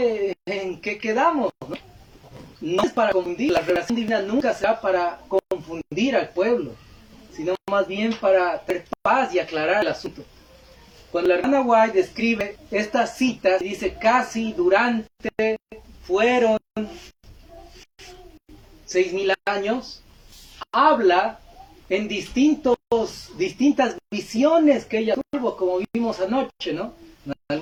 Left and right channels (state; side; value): identical; both; correlation 1.00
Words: quedamos? No es para confundir. La revelación divina nunca será para confundir al pueblo, sino más bien para tener paz y aclarar el asunto. Cuando la hermana White describe estas citas, dice casi, durante, fueron 6.000 años, habla en distintas visiones que ella tuvo, como vimos anoche, ¿no? En